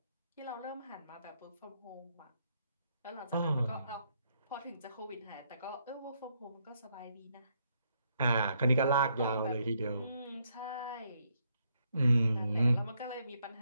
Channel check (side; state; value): both; inverted; correlation -0.75